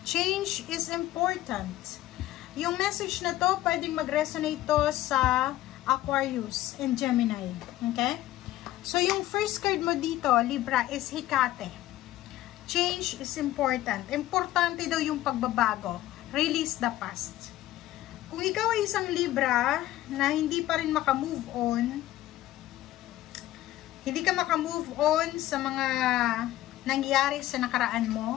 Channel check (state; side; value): quieter; right; 15.0 dB